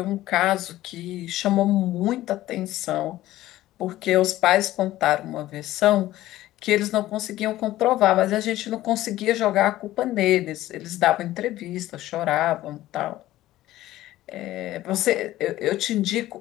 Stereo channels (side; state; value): right; quieter; 15.3 dB